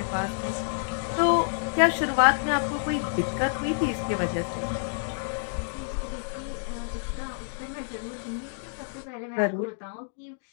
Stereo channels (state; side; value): silent; right; digital silence